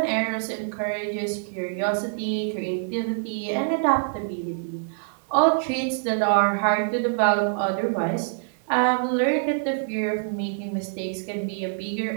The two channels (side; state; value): left; silent; 59 dB below the other